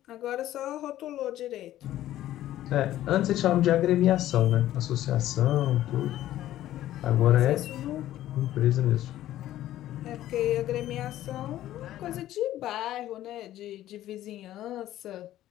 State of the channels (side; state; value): right; quieter; 13.5 dB